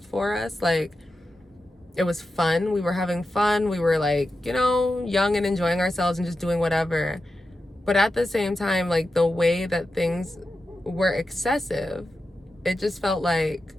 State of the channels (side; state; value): both; normal; correlation 0.91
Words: for us. Like, it was fun, we were having fun, we were, like, you know, young and enjoying ourselves and just doing whatever. But at the same time, like, the way that things were excessive, it just felt like